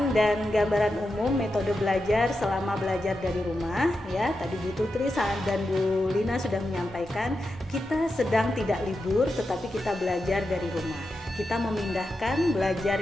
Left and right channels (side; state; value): both; normal; correlation 0.89